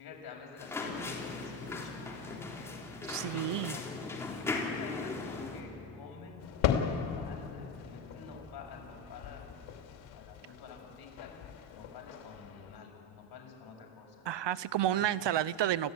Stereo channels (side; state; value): both; normal; correlation 0.13